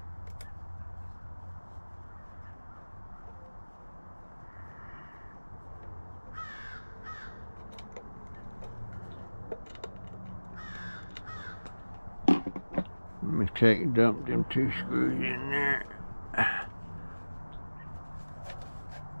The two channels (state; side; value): inverted; both; correlation -1.00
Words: Let me dump them 2 screws in there.